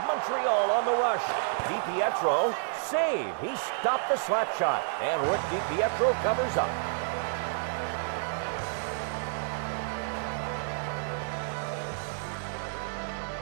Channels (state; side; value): silent; left; digital silence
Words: Montreal on the rush. DiPietro, save. He stopped the slap shot. And Rick DiPietro covers up.